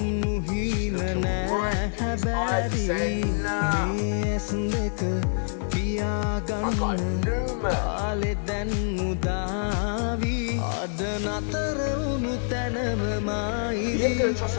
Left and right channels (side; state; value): right; silent; digital silence